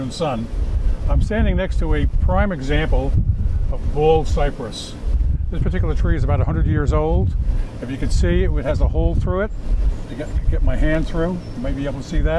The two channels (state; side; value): identical; both; correlation 1.00